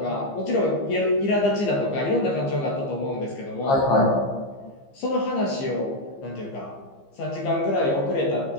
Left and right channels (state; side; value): late; right; 15 ms